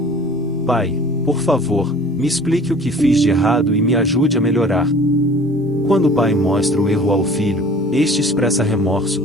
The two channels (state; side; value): normal; both; correlation 0.47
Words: Pai, por favor, me explique o que fiz de errado e me ajude a melhorar. Quando o pai mostra o erro ao filho, este expressa remorso,